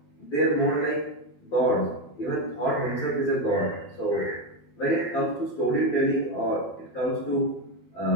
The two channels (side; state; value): right; late; 12 ms